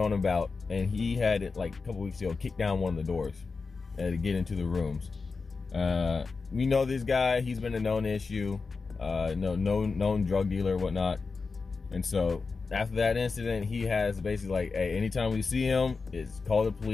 about, and he had it like a couple weeks ago kicked down one of the doors to get into the rooms. We know this guy, he's been a known issue, known drug dealer, whatnot. And so after that incident, he has basically like, hey, anytime we see him, it's call the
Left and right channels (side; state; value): right; quieter; 4.5 dB